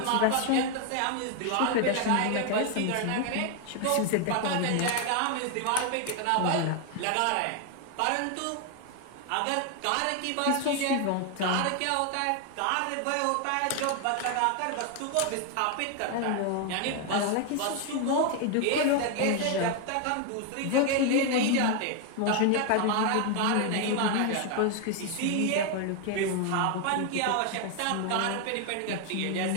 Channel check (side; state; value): both; different; correlation 0.01